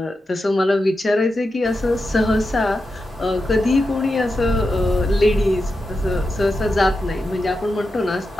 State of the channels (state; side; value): normal; both; correlation 0.89